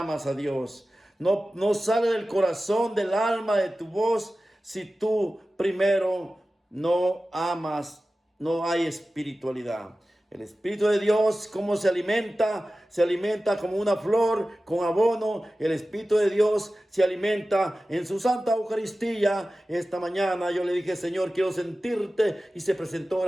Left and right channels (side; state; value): both; normal; correlation 0.95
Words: a Dios. No sale del corazón, del alma, de tu voz, si tú primero no amas, no hay espiritualidad. El Espíritu de Dios, ¿cómo se alimenta? Se alimenta como una flor con abono. El Espíritu de Dios se alimenta en su Santa Eucaristía. Esta mañana yo le dije, Señor, quiero sentirte, y se presentó